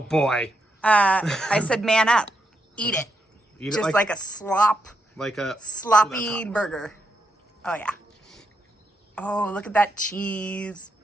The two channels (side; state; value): both; normal; correlation 0.81